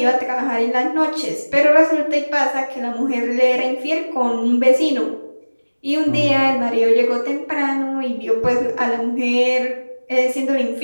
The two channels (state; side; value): inverted; both; correlation -1.00